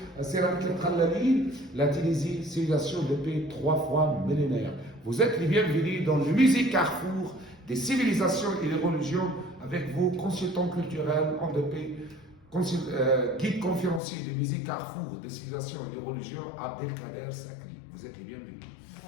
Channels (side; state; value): right; drops out; at 14.0 s